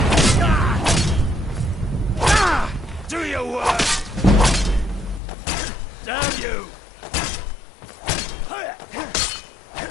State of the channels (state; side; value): drops out; right; at 5.2 s